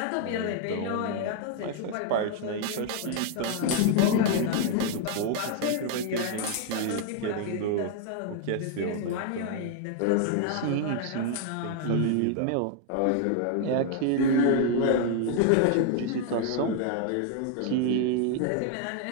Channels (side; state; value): both; different; correlation 0.00